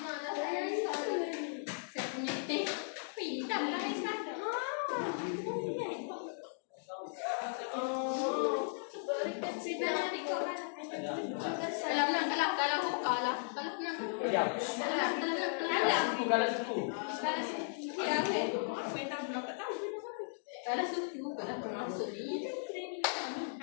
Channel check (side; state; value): right; silent; digital silence